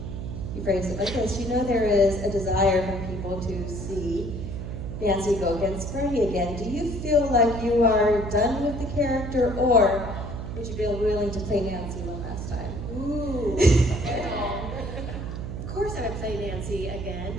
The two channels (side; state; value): right; noise; hum, 6 dB below the sound